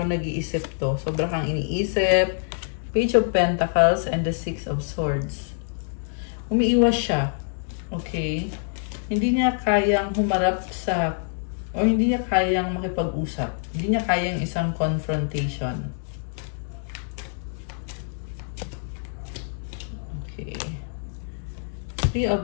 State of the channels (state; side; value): silent; right; digital silence